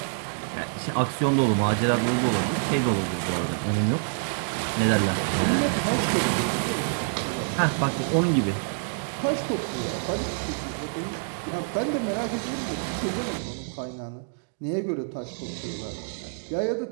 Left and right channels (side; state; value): left; silent; digital silence